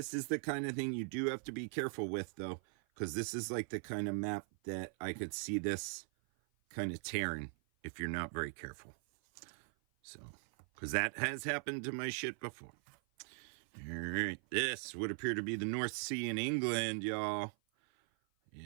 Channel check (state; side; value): silent; left; 51 dB below the other